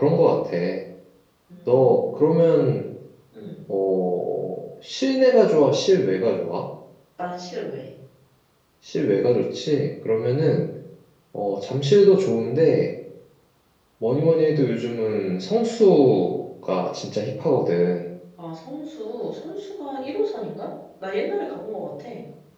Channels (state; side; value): identical; both; correlation 1.00